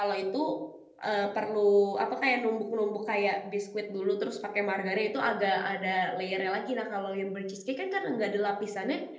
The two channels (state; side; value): identical; both; correlation 1.00